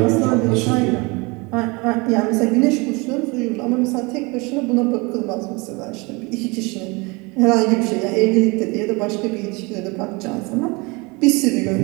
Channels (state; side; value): quieter; left; 26.8 dB